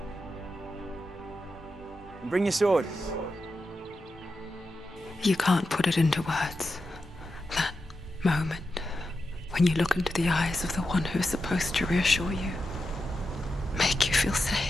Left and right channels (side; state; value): both; normal; correlation 0.89